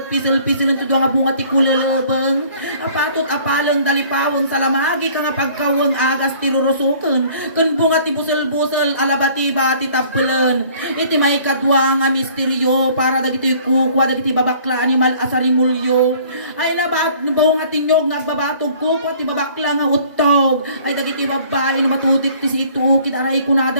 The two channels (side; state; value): both; inverted; correlation -0.54